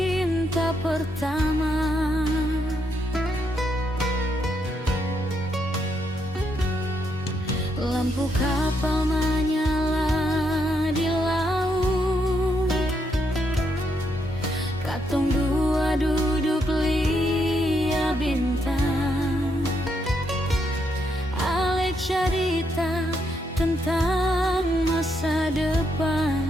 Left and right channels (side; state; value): both; normal; correlation 0.78